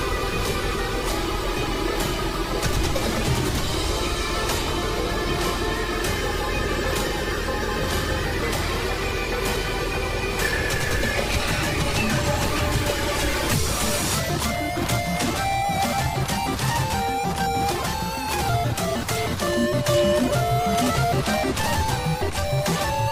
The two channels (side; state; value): both; identical; correlation 1.00